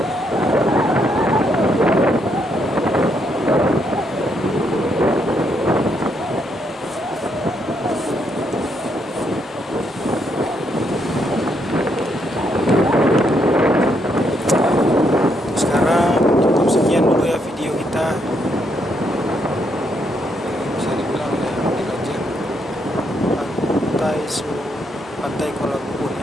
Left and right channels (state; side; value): normal; both; correlation 0.76